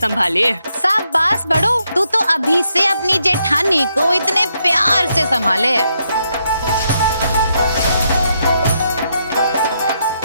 शाबाश बड़ो, तू तो अभी से अपनी जेठानी को इतने प्यार से संभाले।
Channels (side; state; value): both; inverted; correlation -0.79